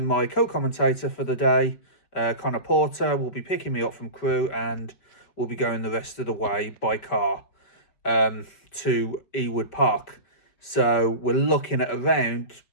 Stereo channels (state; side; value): late; right; 5.1 ms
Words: my co-commentator for the day, Connor Porter, will be picking me up from Crewe, and we'll be going the rest of the way by car to Ewood Park. So we're looking at around